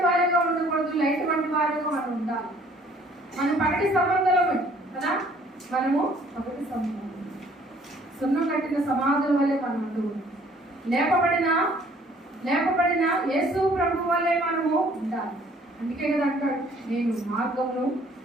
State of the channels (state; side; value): normal; both; correlation 0.58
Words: వారిగా ఉండకూడదు, లైట్ వంటి వారిగా మనం ఉండాలి. మనం పగటి సంబంధమే కదా, మనము పగటి సంబంధం. సున్నం కట్టిన సమాధుల వల్లే మనం లేపబడిన యేసు ప్రభు వల్లే మనము ఉండాలి. అందుకే కదా అంటాడు, నేను మార్గమును